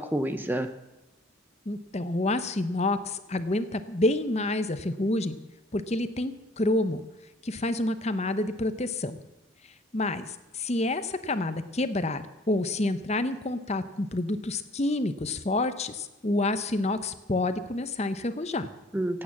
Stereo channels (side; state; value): both; normal; correlation 0.56